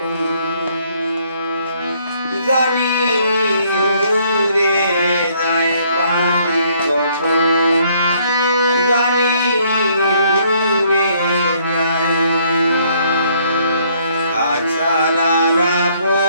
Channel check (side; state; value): both; inverted; correlation -0.66